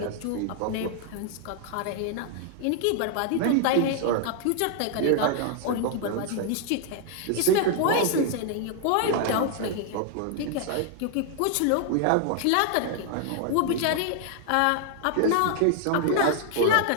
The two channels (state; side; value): different; both; correlation 0.00